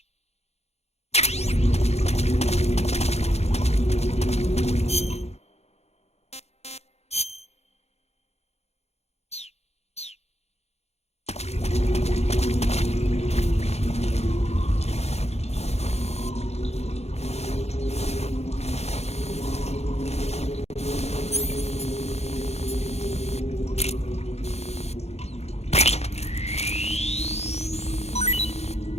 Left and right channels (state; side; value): late; right; 0.31 ms